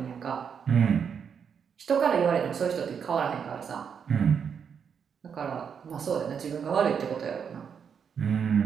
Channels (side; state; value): left; quieter; 7.1 dB